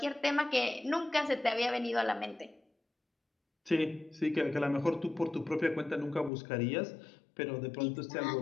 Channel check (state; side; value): drops out; right; at 6.3 s